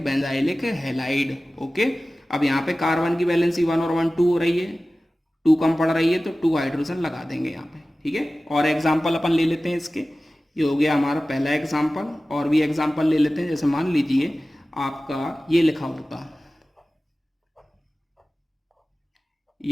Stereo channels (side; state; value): both; normal; correlation 0.96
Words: हैलाइड। ओके, अब यहाँ पे कार्बन की वैलेंसी 1 और 1 2 हो रही है, 2 कम पड़ रही है, तो 2 हाइड्रोजन लगा देंगे यहाँ पे, ठीक है। और एग्जाम्पल अपन ले लेते हैं इसके, ये हो गया हमारा पहला एग्जाम्पल। और भी एग्जाम्पल ले लेते हैं। जैसे मान लीजिए आपका ये लिखा होता,